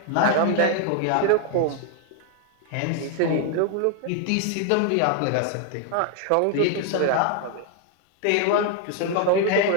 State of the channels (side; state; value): both; different; correlation 0.01